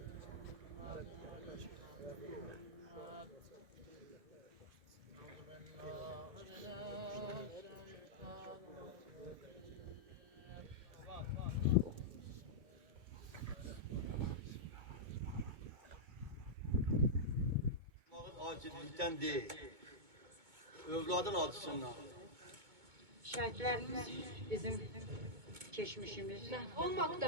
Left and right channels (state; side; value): late; left; 2.2 ms